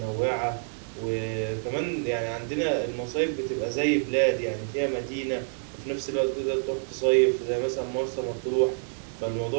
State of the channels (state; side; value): silent; left; digital silence